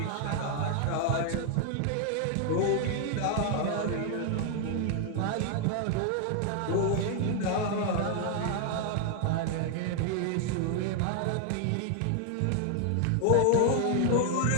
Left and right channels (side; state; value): both; different; correlation 0.00